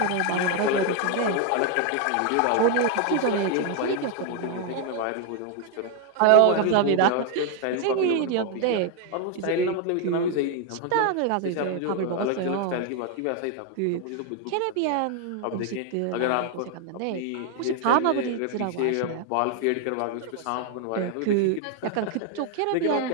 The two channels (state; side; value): different; both; correlation 0.01